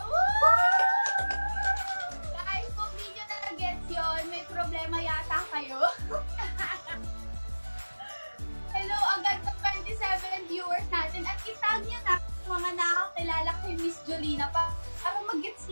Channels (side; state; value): both; inverted; correlation -1.00